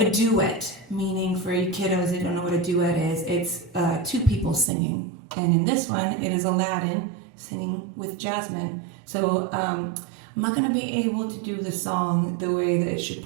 duet, meaning for you kiddos who don't know what a duet is, it's two people singing. And in this one, it is Aladdin singing with Jasmine. So I'm not going to be able to do the song the way that it should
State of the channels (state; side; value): drops out; left; at 4.7 s